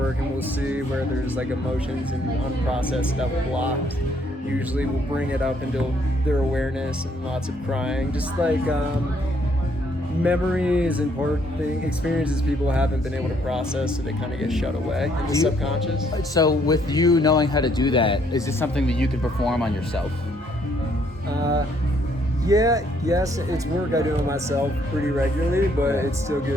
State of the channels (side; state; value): both; normal; correlation 0.68